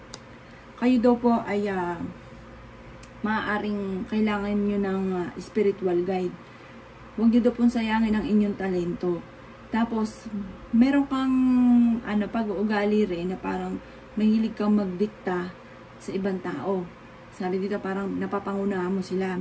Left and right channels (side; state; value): both; identical; correlation 1.00